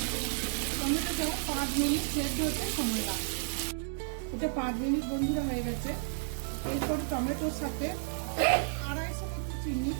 টমেটোটা 5 মিনিট সেদ্ধ হতে সময় লাগবে। এটা 5 মিনিট বন্ধুরা হয়ে গেছে। এরপর টমেটোর সাথে 250 মতো চিনি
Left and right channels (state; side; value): silent; left; digital silence